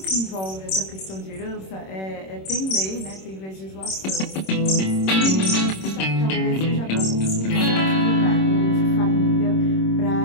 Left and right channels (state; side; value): late; right; 26 ms